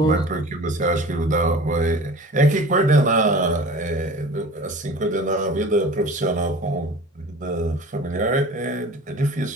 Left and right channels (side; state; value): both; normal; correlation 0.41